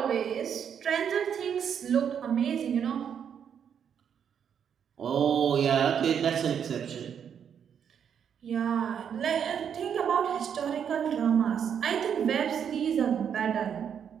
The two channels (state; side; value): quieter; left; 8.0 dB